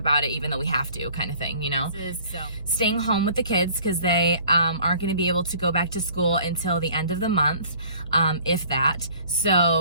it, even though we have to, kind of thing, you know? So staying home with the kids because they aren't going to be able to go back to school until the end of the month, if that.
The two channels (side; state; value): both; inverted; correlation -0.53